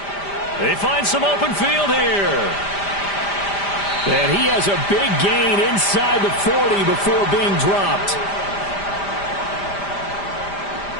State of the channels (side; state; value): right; late; 5.0 ms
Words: They find some open field here. And he has a big gain inside the 40 before being dropped.